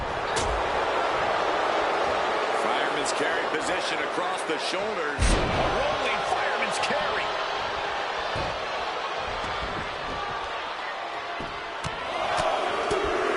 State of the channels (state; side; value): identical; both; correlation 1.00